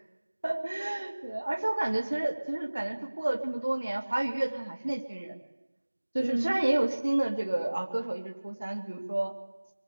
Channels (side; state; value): both; inverted; correlation -1.00